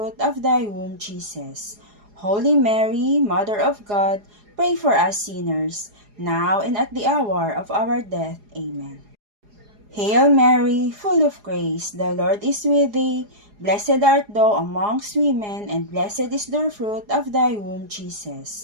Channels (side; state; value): left; late; 4.8 ms